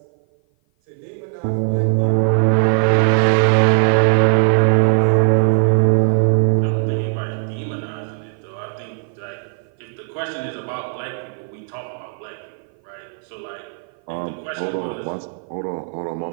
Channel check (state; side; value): silent; left; 56 dB below the other